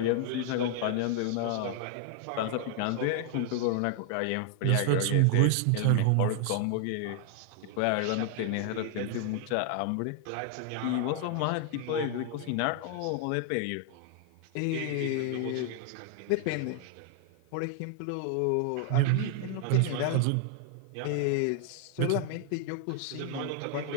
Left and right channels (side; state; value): both; different; correlation 0.00